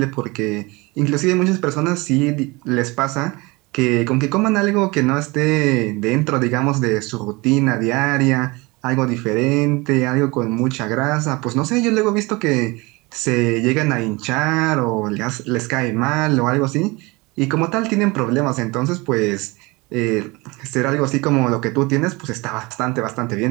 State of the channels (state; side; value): quieter; left; 24.5 dB